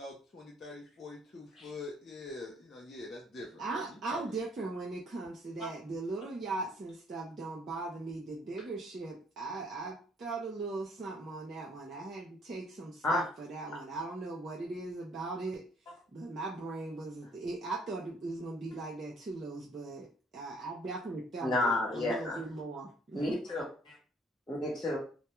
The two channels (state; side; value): normal; both; correlation 0.62